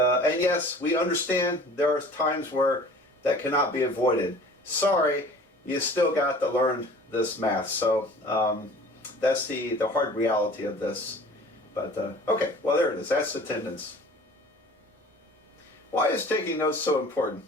we understand there are times where that cannot be avoided. Sorry, you still got to learn this math. So that's the hard reality of this. But okay, well, there it is. That's attendance. Why is taking notes so important?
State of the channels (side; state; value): both; normal; correlation 0.46